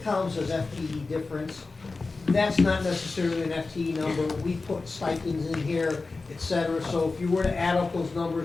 says FTE difference, that's not necessarily an FTE number. We put stipends in here, et cetera. So if you were to add up those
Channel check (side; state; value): right; quieter; 3.8 dB